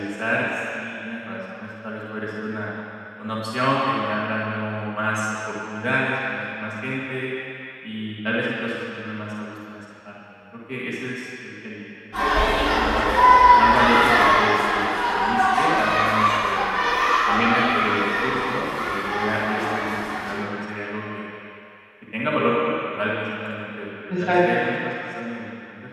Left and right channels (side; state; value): both; identical; correlation 1.00